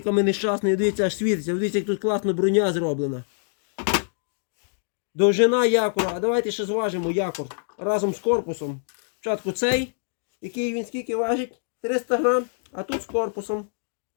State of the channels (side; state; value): right; silent; digital silence